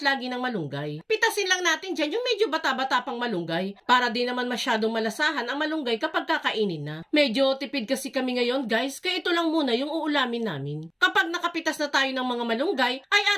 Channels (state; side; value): identical; both; correlation 1.00